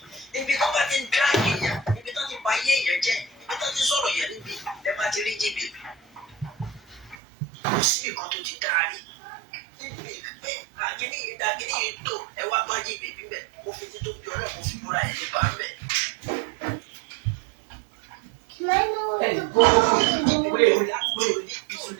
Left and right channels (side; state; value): left; drops out; at 7.2 s